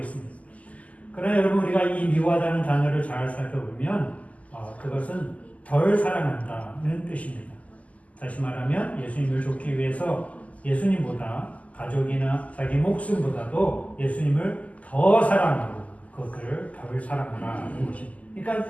그러나 여러분 우리가 이 미워하다는 단어를 잘 살펴보면 그것은 덜 사랑한다는 뜻입니다. 다시 말하면 예수님을 좇기 위해서 예수님보다 가족이나 자기 목숨보다도 예수님을 더 사랑하고 그것을 덜 사랑하라는 것입니다.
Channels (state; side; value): late; right; 0.071 ms